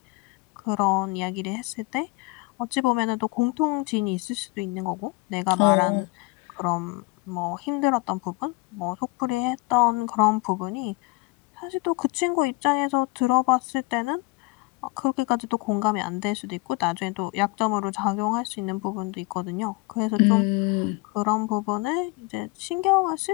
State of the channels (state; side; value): quieter; right; 24.2 dB